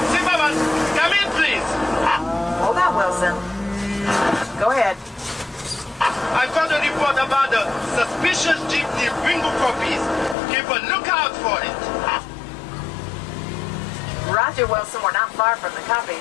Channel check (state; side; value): drops out; right; at 10.4 s